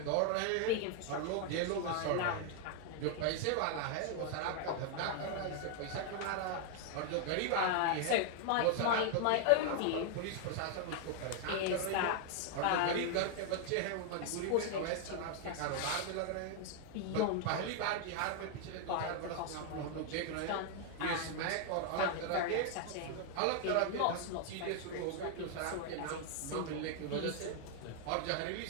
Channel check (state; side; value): different; both; correlation 0.00